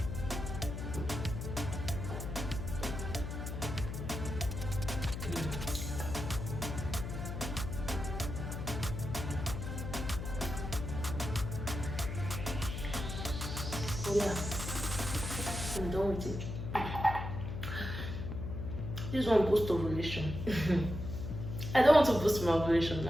Oh yeah, I'm done with it. This one boosts ovulation. I don't want to boost my ovulation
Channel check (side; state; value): left; noise; hum, 5 dB below the sound